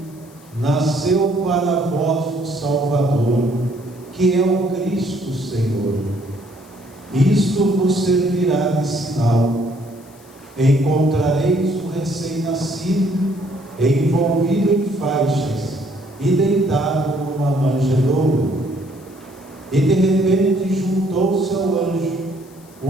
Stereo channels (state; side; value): noise; left; hiss, 26 dB below the sound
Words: nasceu para vós um Salvador, que é o Cristo Senhor. Isto vos servirá de sinal: encontrareis um recém-nascido, envolvido em faixas e deitado numa manjedoura. E de repente juntou-se ao anjo